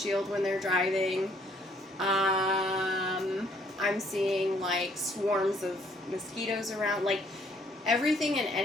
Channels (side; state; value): both; normal; correlation 0.64